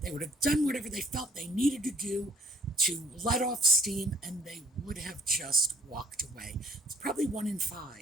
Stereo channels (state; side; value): normal; both; correlation 0.59